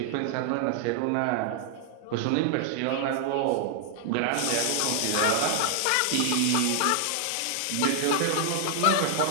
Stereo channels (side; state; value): both; different; correlation 0.00